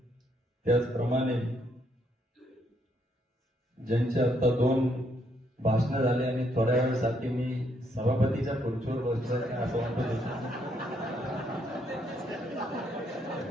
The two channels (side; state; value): both; normal; correlation 0.73